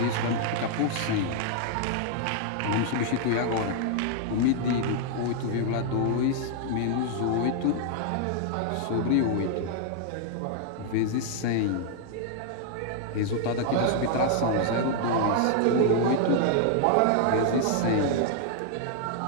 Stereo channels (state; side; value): different; both; correlation 0.00